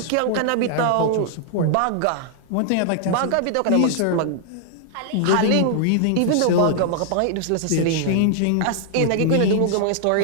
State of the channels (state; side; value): different; both; correlation -0.01